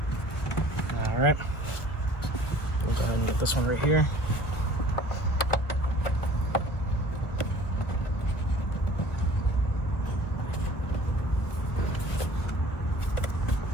All right, we'll go ahead and get this one right here.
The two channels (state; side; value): late; right; 1.2 ms